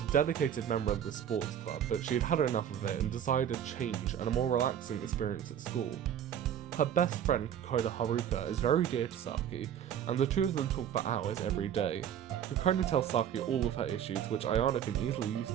dedicated member of the sports club, but she had had enough of it and decided a change and a more relaxing experience at school. Her best friend, Kokona Haruto, is very dear to Saki, and the two of them talk for hours every day. Kokona tells Saki all of her issues, which Ayano can easily use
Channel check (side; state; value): left; quieter; 9.5 dB